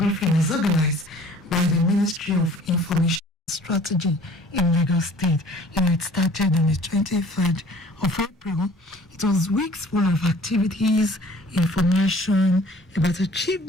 as organized by the Ministry of Information Strategy in Lagos State. It started on the 23rd of April. It was weeks full of activities, information about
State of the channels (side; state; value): both; normal; correlation 0.51